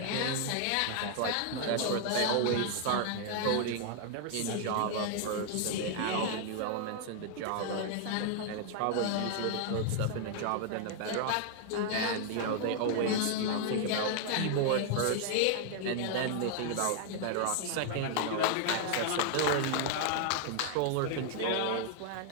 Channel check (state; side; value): different; both; correlation 0.00